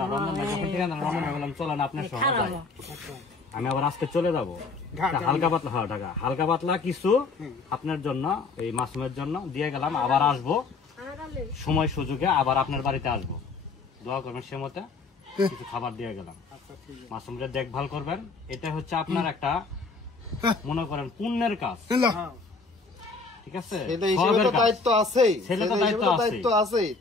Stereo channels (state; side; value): quieter; right; 4.2 dB